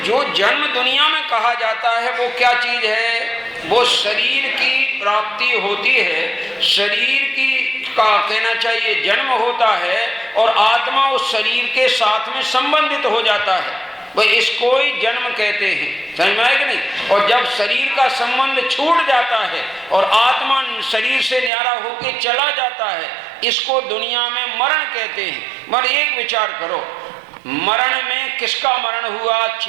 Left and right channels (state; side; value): drops out; left; at 21.5 s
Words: जो जन्म दुनिया में कहा जाता है वो क्या चीज है? वो शरीर की प्राप्ति होती है। शरीर की का कहना चाहिए जन्म होता है और आत्मा उस शरीर के साथ में संबंधित हो जाता है, वह इसको ही जन्म कहते हैं। समझ में आए कि नहीं? और जब शरीर का संबंध छूट जाता है और आत्मा शरीर से न्यारा होकर चला जाता है, इसको दुनिया में मरण कहते हैं। मगर एक विचार करो, मरण में किसका मरण हुआ?